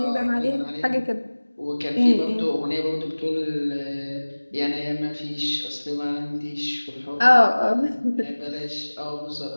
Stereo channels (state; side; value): inverted; both; correlation -1.00